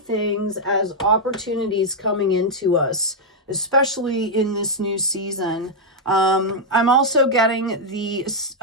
as opportunities coming into us, especially in this new season. I'm also getting the,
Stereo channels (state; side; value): normal; both; correlation -0.03